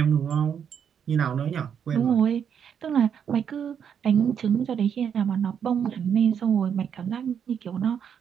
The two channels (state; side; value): quieter; left; 7.9 dB